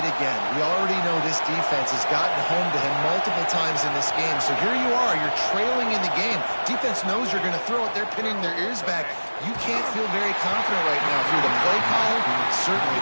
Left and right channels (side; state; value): both; inverted; correlation -1.00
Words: again. We already know this defense has gotten home to him multiple times in this game. So here you are, you're trailing in the game. Defense knows you're going to throw it. They're pinning their ears back. You can't feel very confident right now through the play caller, certainly